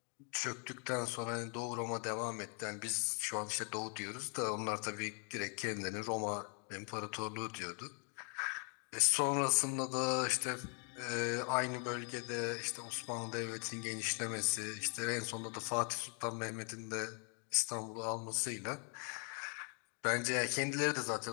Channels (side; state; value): right; quieter; 39.5 dB